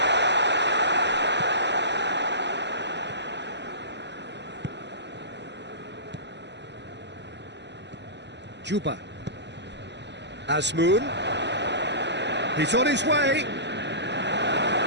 Juba. Azmoun. He's on his way.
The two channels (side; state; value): left; late; 0.51 ms